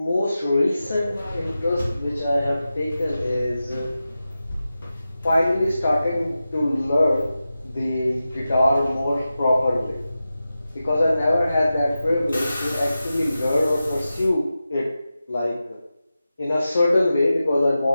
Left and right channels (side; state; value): both; inverted; correlation -0.93